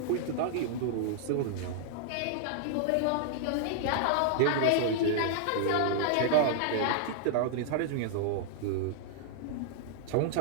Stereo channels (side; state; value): both; different; correlation -0.01